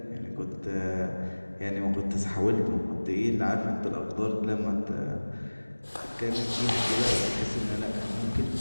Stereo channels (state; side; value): inverted; both; correlation -1.00